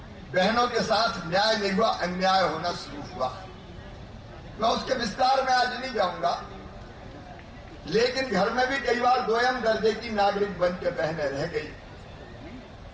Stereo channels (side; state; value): both; identical; correlation 1.00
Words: बहनों के साथ न्याय नहीं हुआ, अन्याय होना शुरू हुआ। मैं उसके विस्तार में आज नहीं जाऊंगा, लेकिन घर में भी कई बार दोयम दर्जे की नागरिक बन के बहनें रह गई।